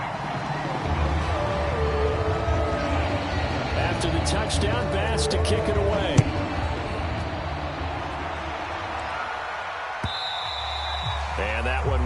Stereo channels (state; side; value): identical; both; correlation 1.00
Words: After the touchdown, Bass to kick it away. And that one